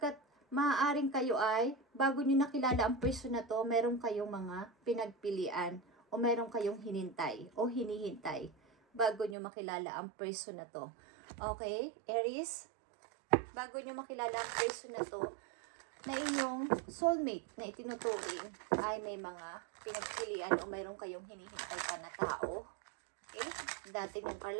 maaaring kayo ay, bago nyo nakilala ang person na to, meron kayong mga pinagpilian o meron kayong hinintay o hinihintay bago nyo makilala ang person na to. Okay? Aries, bago nyo makilala ang person na to, na inyong soulmate na itinuturing ay may mga pinagpilian o mayroon kayong hinihintay pa na tao. Okay? Dati ng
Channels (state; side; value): drops out; left; at 9.3 s